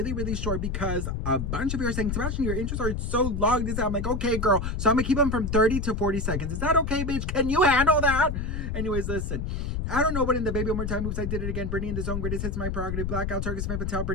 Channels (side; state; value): left; noise; rumble, 2 dB below the sound